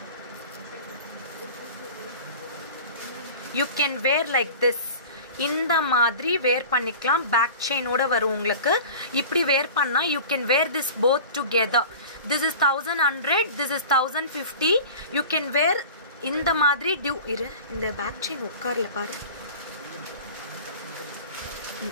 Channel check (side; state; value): both; inverted; correlation -0.38